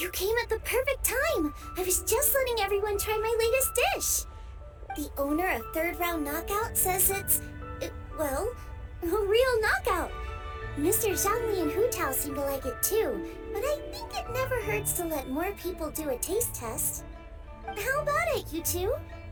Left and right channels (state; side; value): identical; both; correlation 1.00